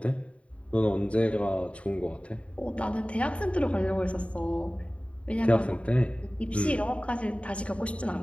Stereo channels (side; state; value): right; late; 0.063 ms